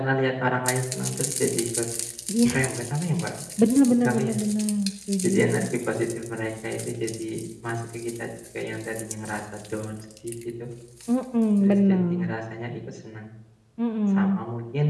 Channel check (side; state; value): both; identical; correlation 1.00